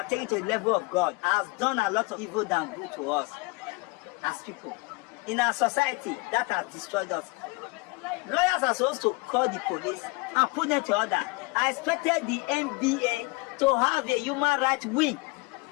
taking to the level of God has done a lot of evil than good to us as people. In our society, that has destroyed us. Lawyers are supposed to call the police and put them to order. I expected the NBA to have a human rights wing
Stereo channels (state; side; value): quieter; right; 26.8 dB